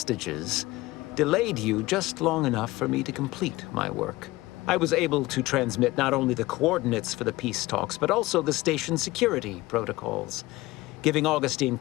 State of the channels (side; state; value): right; quieter; 19.4 dB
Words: delayed you just long enough for me to complete my work. I was able to transmit not only the coordinates for the peace talks, but also the station security protocols, giving Augustine